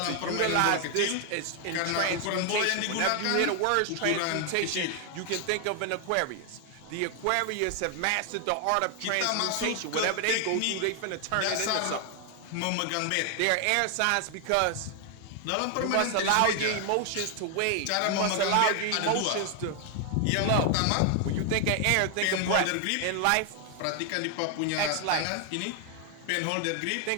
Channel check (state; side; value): different; both; correlation 0.00